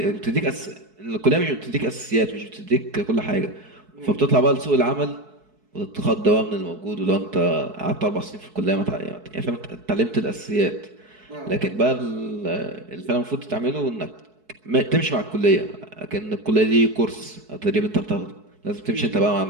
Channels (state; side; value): late; left; 4.6 ms